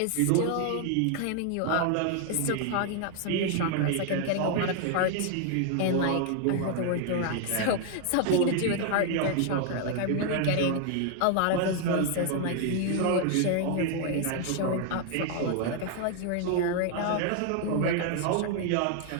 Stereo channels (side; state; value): both; different; correlation 0.00